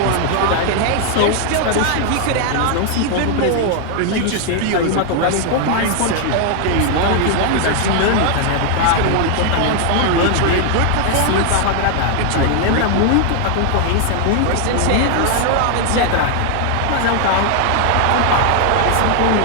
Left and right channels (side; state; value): both; different; correlation 0.00